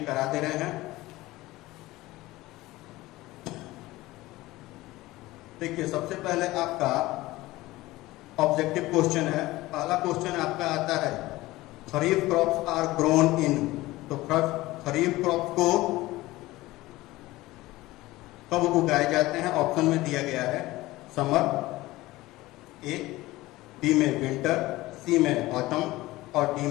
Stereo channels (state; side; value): quieter; right; 18.6 dB